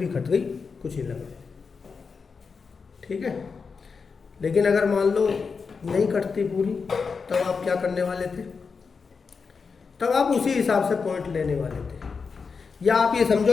कट गई, कुछ ही लगा, ठीक है। लेकिन अगर मान लो नहीं कटती पूरी, तब आप क्या करने वाले थे? तब आप उसी हिसाब से पॉइंट लेने वाले थे। या आप ये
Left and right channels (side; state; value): right; quieter; 5.2 dB